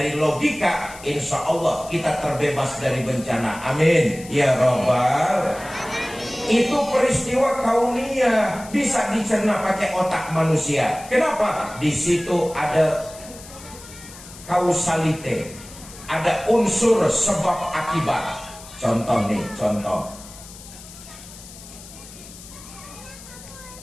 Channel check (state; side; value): noise; left; hiss, 17 dB below the sound